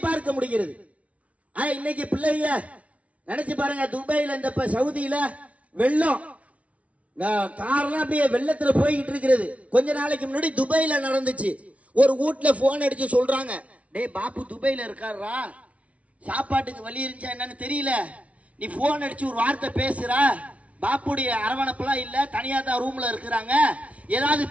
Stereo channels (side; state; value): left; late; 0.065 ms